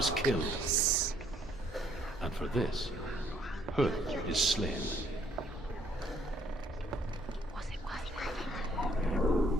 killed. darkness. And for this, Huth is slain.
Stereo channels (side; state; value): both; normal; correlation 0.65